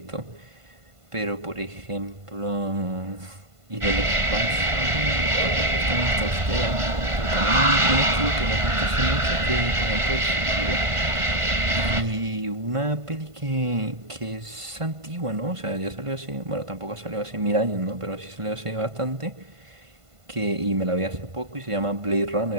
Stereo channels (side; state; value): left; late; 1.5 ms